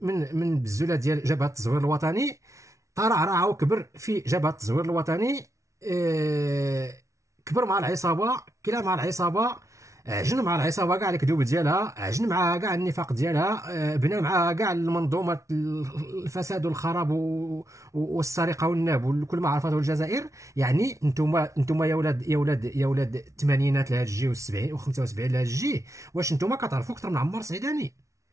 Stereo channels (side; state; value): left; late; 0.15 ms